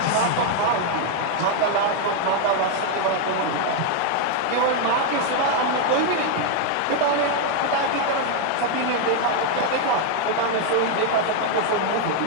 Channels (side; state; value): both; different; correlation 0.00